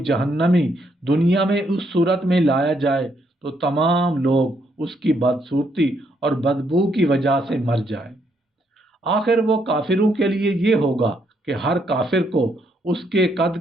دنیا میں اس صورت میں لایا جائے تو تمام لوگ اس کی بدصورتی اور بدبو کی وجہ سے مر جائیں۔ آخر وہ کافروں کے لیے یہ ہوگا کہ ہر کافر کو اس کے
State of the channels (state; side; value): normal; both; correlation 0.74